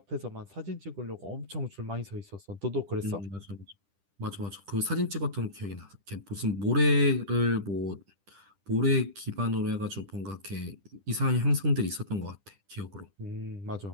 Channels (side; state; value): left; late; 10 ms